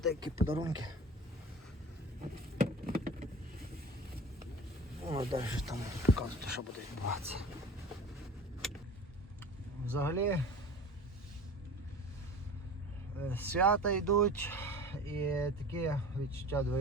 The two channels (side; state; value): both; normal; correlation 0.38